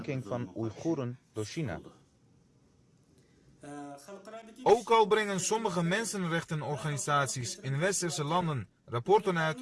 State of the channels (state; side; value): identical; both; correlation 1.00